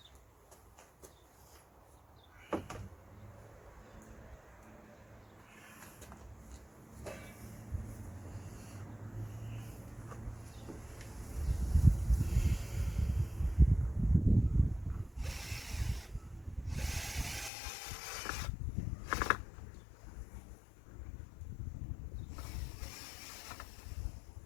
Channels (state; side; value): drops out; right; at 17.5 s